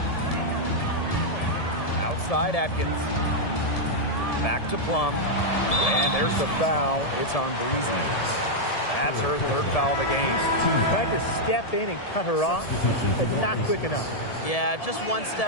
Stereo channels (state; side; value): late; right; 1.7 ms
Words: Outside Atkins. Back to Plum. And there's the foul. It's on Breezy. That's her third foul of the game. Tried to step in and cut her off, but not quick enough. Yeah, just one